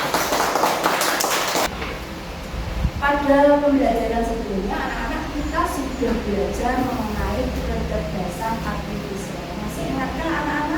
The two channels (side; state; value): both; identical; correlation 1.00